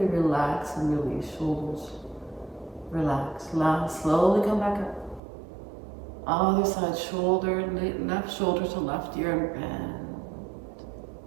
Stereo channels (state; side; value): drops out; left; at 5.2 s